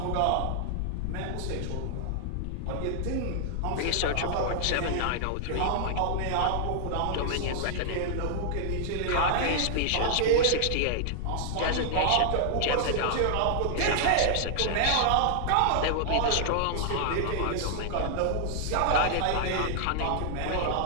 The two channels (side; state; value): both; different; correlation 0.00